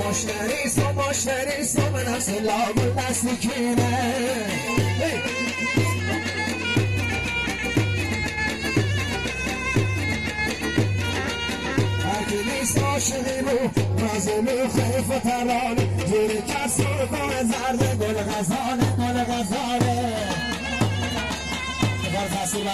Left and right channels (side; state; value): both; identical; correlation 1.00